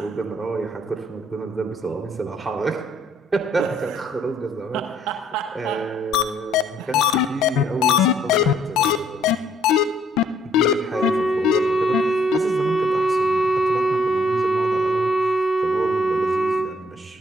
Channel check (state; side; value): normal; both; correlation 0.65